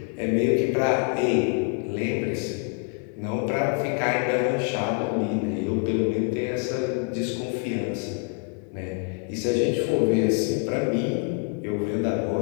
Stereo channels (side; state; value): right; quieter; 34.2 dB